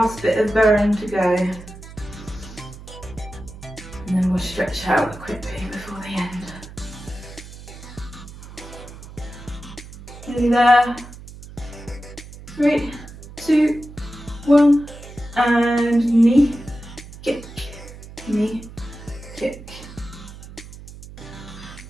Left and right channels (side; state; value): right; noise; hum, 16 dB below the sound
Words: bit of burn to go. And then we'll stretch out quickly before the end. Nearly there. 3, 2, 1, and knee, kick, knee, kick.